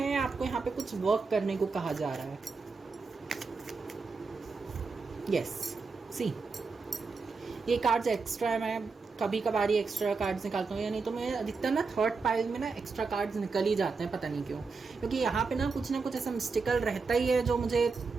आपको यहाँ पे कुछ वर्क करने को कहा जा रहा है। यस सी, ये कार्ड्स एक्स्ट्रा है, मैं कभी कभार ही एक्स्ट्रा कार्ड्स निकालता हूँ, या नहीं तो मैं अधिकतर ना थर्ड पाइल में ना एक्स्ट्रा कार्ड्स निकल ही जाते हैं, पता नहीं क्यों। क्योंकि यहाँ पे ना कुछ ऐसा मिस्टिकल रहता ही है जो मुझे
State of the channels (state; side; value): quieter; left; 4.5 dB